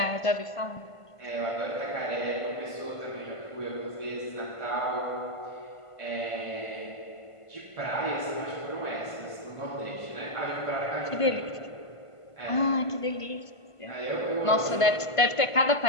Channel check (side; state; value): right; late; 1.5 ms